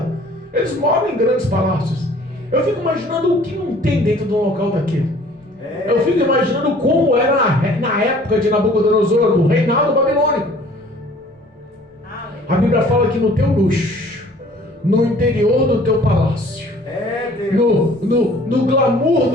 Eles moram em grandes palácios. Eu fico imaginando o que não tem dentro de um local daquele. Eu fico imaginando como era na época de Nabucodonosor, do reinado babilônico. A Bíblia fala que no teu luxo, no interior do teu palácio, no glamour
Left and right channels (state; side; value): normal; both; correlation 0.53